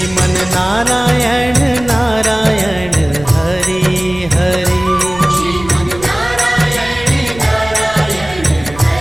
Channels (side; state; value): right; noise; rumble, 17 dB below the sound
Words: नारायण नारायण हरि हरि।